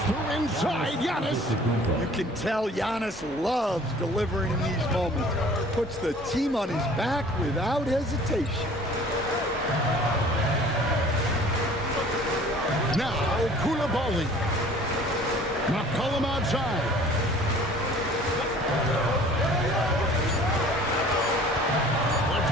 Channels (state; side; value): normal; both; correlation 0.50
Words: Through inside, Giannis. You can tell Giannis loves delivering in these moments. Puts the team on his back without hesitation. Now, Koulibaly. McCollum outside. Puts